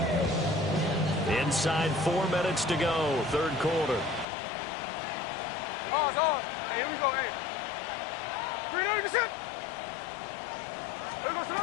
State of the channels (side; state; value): right; drops out; at 4.2 s